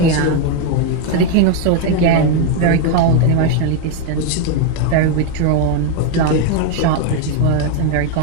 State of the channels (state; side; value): different; both; correlation 0.01